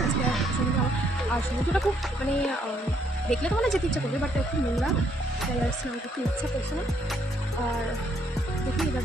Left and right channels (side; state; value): both; normal; correlation 0.70